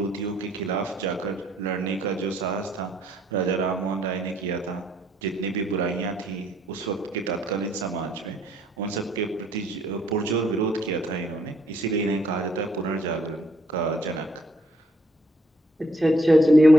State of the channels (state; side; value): normal; both; correlation 0.68